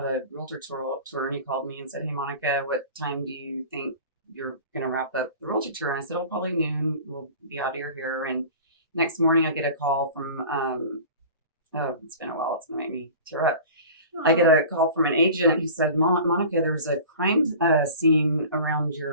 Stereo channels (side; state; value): both; inverted; correlation -0.40